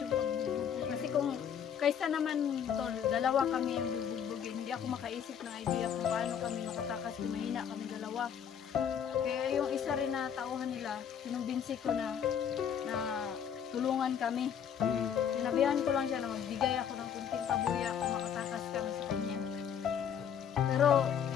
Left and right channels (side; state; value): right; quieter; 8.3 dB